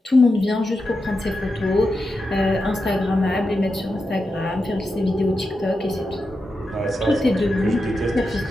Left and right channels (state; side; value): normal; both; correlation 0.89